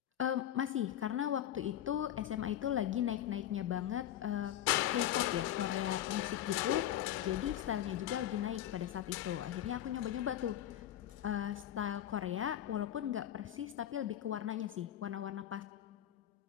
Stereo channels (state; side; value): quieter; right; 11.6 dB